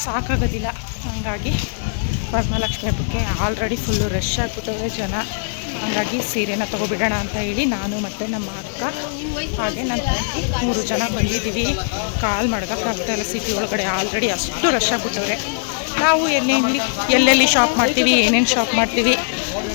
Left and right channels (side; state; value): right; silent; digital silence